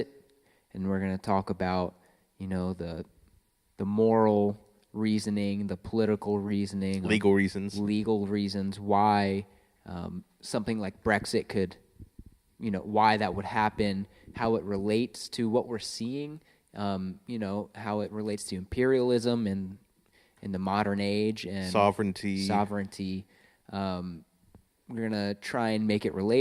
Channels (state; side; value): identical; both; correlation 1.00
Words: and we're going to talk about, the moral reasoning, the political reasoning, legal reasons why something like Brexit could, why that would happen, how it relates to what we're seeing, how it relates to imperialism and in the modern age and sovereignty. We're gonna try and make it